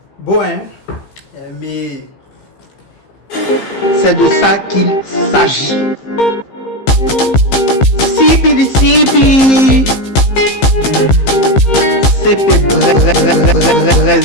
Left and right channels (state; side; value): late; right; 15 ms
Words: Bon, hein, mais C'est de ça qu'il s'agit. Sipi di sipi. Sipi